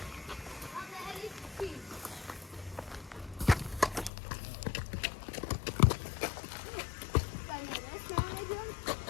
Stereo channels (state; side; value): drops out; right; at 4.1 s